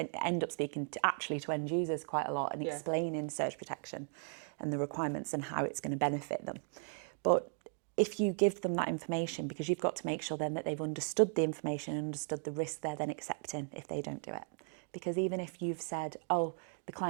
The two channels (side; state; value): left; silent; 53 dB below the other